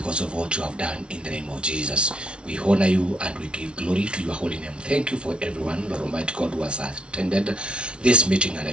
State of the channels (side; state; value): left; late; 0.058 ms